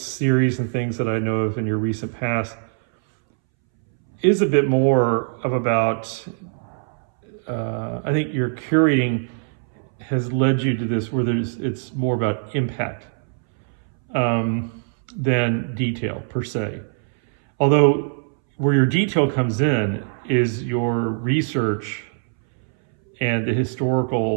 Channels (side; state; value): left; silent; 63 dB below the other